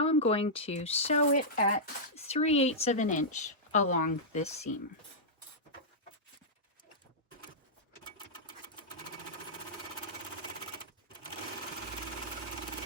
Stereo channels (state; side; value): normal; both; correlation -0.11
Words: I'm going to sew it at 3/8 of an inch along this seam.